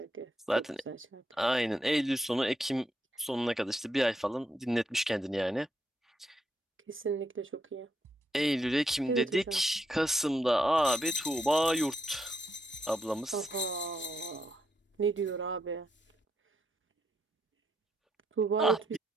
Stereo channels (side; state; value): both; normal; correlation 0.78